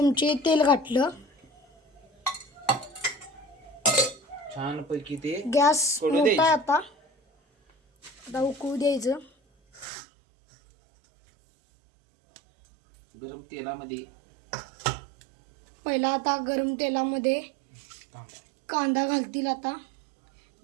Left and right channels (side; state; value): left; drops out; at 9.9 s